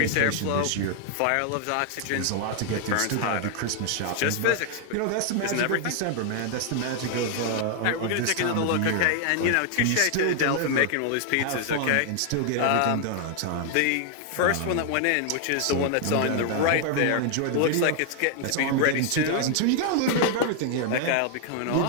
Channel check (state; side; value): different; both; correlation 0.00